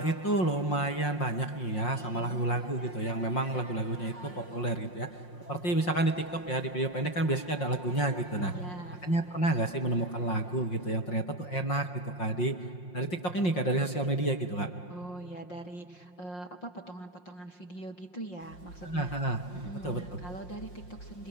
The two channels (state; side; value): late; right; 5.6 ms